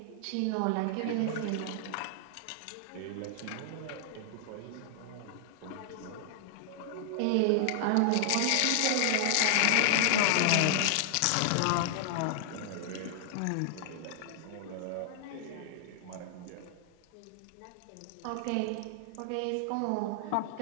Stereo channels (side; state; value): both; different; correlation 0.00